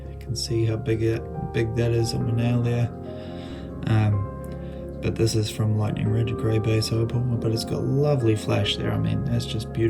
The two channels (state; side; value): identical; both; correlation 1.00